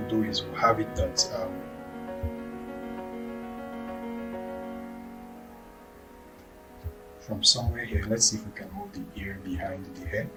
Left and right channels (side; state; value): both; identical; correlation 1.00